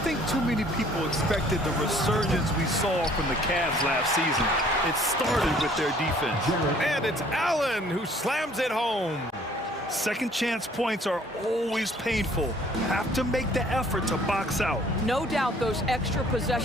think too many people expected the resurgence we saw from the Cavs last season. It started with their defense. And it's Allen who slams it home. Second chance points are always painful. Have to make the effort to box out. No doubt those extra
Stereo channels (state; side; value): normal; both; correlation 0.57